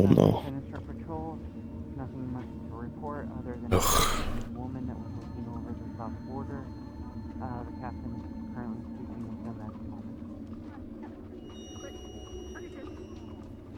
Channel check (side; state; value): both; identical; correlation 1.00